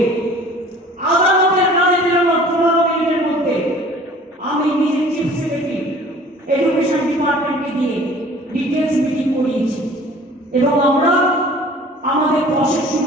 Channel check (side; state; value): both; normal; correlation 0.49